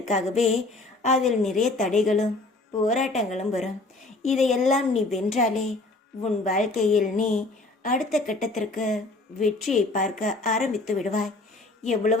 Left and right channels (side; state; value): right; quieter; 3.0 dB